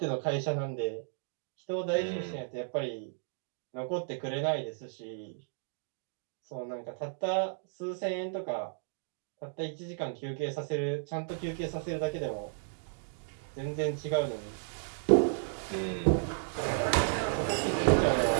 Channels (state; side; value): silent; left; digital silence